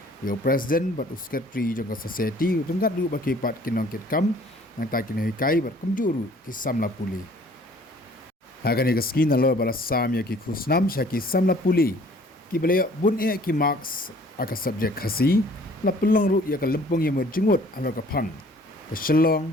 ya president but secretary jong ka society tengkat du bakipat kinong kit kam nang ta kinoi kai ber kumjuru kisam la puli Hagan ika skin na lo bala samya ki khusnam shaki samla puli ki balaya bun e ki marks aka subject khasi la pelong ru ya ka lempung ya merjengut alo ka phang ka Shillong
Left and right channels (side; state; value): both; normal; correlation 0.54